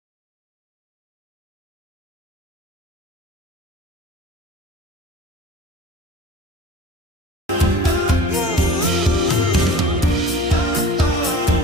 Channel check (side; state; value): both; normal; correlation 0.40